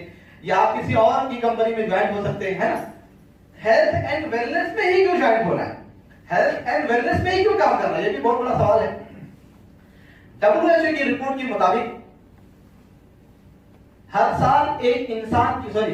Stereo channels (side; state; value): both; identical; correlation 1.00